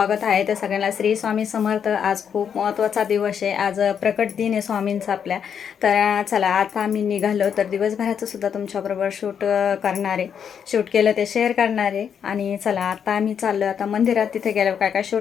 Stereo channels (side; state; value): right; quieter; 7.7 dB